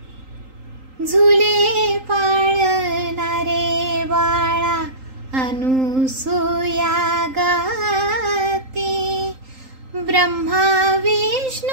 झुले पाळणारे बाळा अनुसूया गाते, ब्रह्मा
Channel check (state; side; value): late; left; 3.8 ms